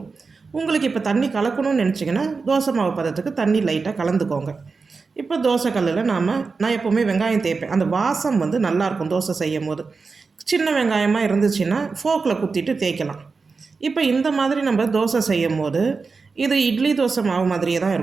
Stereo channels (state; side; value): quieter; left; 4.5 dB